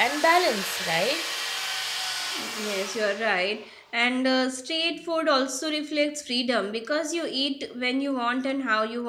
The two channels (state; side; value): identical; both; correlation 1.00